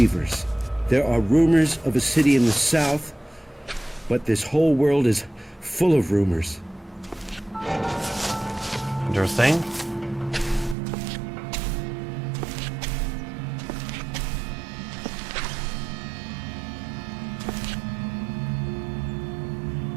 There are rumors of a city in the south, but this whole world is full of rumors. Interesting.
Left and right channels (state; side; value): drops out; left; at 10.8 s